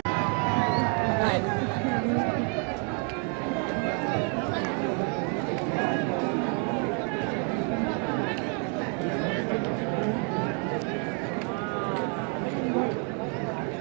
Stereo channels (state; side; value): quieter; left; 39.1 dB